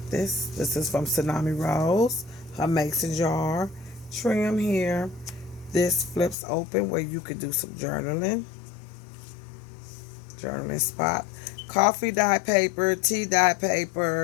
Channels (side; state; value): right; drops out; at 6.4 s